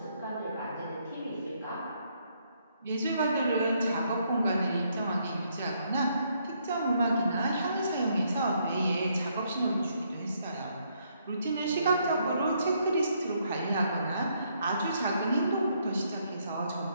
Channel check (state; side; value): inverted; both; correlation -0.72